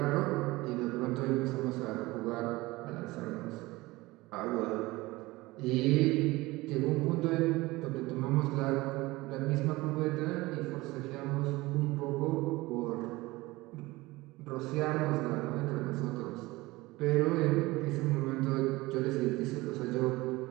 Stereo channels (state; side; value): quieter; left; 20.6 dB